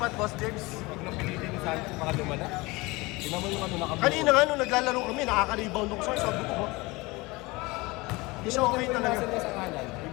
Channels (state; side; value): quieter; right; 23.2 dB